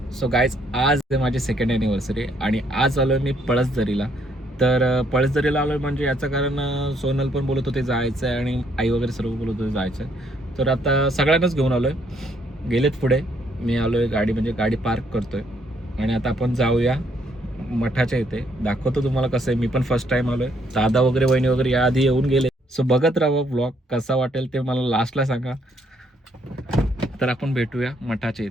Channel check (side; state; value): both; normal; correlation 0.69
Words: सो गाईज, आज माझी सेकंड ॲनिव्हर्सरी आणि आज आलो मी पळसदरीला. तर पळसदरीला आलो म्हणजे याचं कारण सोनल पण बोलत होते जायचं आहे आणि आई वगैरे सर्व बोलत होते जायचं आहे. तर आता सगळ्यांनाच घेऊन आलो आहे. गेलेत पुढे, मी आलो आहे गाडी म्हणजे गाडी पार्क करतो आहे आणि आता आपण जाऊया मठाच्या इथे. दाखवतो तुम्हाला कसं आहे. मी पण फर्स्ट टाईम आलो आहे. दादा वगैरे वहिनी वगैरे याआधी येऊन गेले. सो बघत राहा ब्लॉग, कसा वाटेल ते मला लास्टला सांगा. तर आपण भेटूया मठाच्या